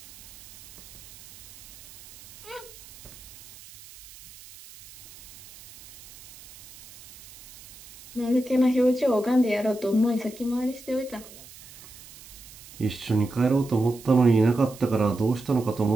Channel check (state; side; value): noise; right; hiss, 19 dB below the sound